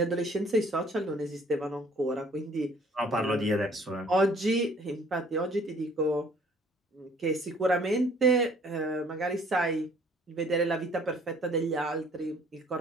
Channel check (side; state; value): both; normal; correlation 0.57